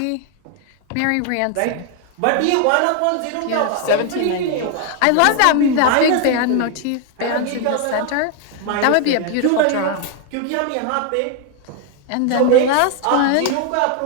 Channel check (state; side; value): different; both; correlation 0.00